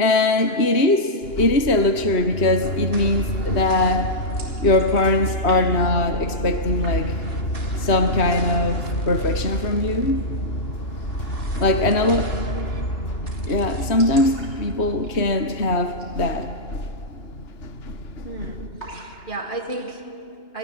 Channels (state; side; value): late; right; 2.9 ms